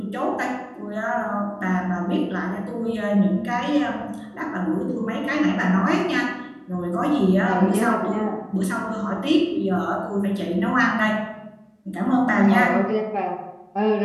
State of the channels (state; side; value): identical; both; correlation 1.00